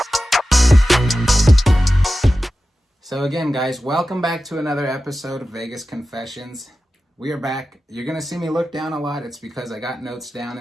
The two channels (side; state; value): both; normal; correlation 0.94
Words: So again, guys, welcome back to another episode of Vegas Confessions. We are back. You're going to see me look down a lot. It's because I got notes down